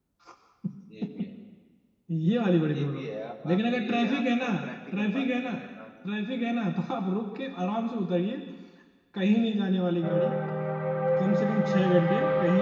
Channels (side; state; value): both; identical; correlation 1.00